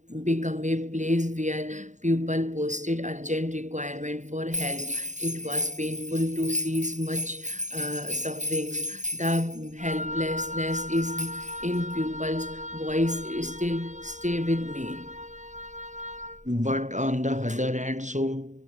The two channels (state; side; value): late; left; 0.35 ms